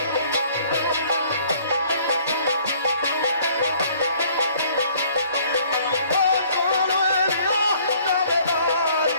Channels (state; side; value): inverted; both; correlation -0.58